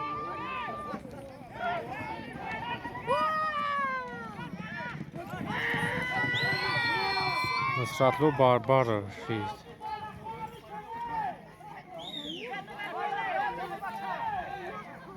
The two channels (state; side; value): identical; both; correlation 1.00